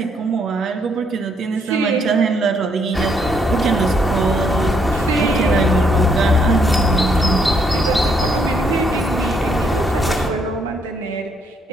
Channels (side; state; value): both; normal; correlation 0.72